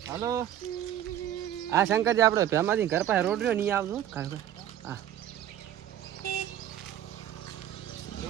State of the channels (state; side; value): quieter; left; 11.4 dB